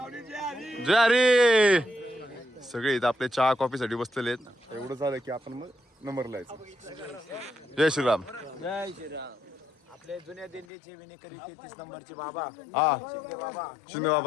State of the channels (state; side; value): drops out; right; at 10.7 s